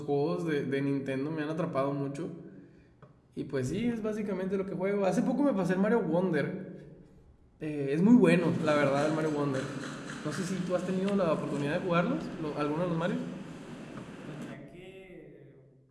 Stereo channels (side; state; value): both; identical; correlation 1.00